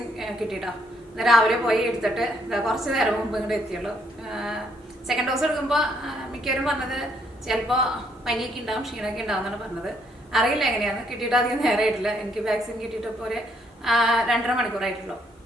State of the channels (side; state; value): both; normal; correlation 0.70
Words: കിട്ടിയിട്ടോ. ഇന്ന് രാവിലെ പോയി എടുത്തിട്ട് കുറച്ച് നേരം മുമ്പ് ഇങ്ങോട്ട് എത്തിയുള്ളൂ. സെക്കൻഡ് ഡോസ് എടുക്കുമ്പോൾ മിക്കവരും പറഞ്ഞത് ചിലപ്പോൾ പനിയൊക്കെ ഉണ്ടാവും, ക്ഷീണമൊക്കെ ഉണ്ടാവും എന്നാണ് പറഞ്ഞത്. അറിയില്ല എങ്ങനെയാണ്. കിട്ടിയിട്ട് അധികം നേരമായിട്ടില്ല. എനിക്ക് വാക്സിൻ കിട്ടിയിട്ട് ഇപ്പോൾ ഒരു 2.5 മണിക്കൂറായിട്ടുള്ളൂ.